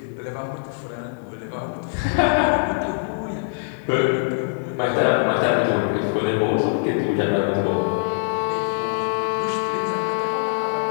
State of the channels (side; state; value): right; silent; 59 dB below the other